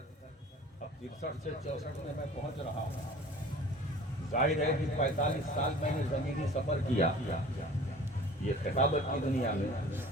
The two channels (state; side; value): normal; both; correlation 0.45